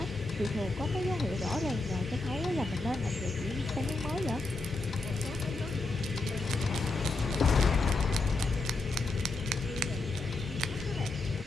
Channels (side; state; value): right; quieter; 3.1 dB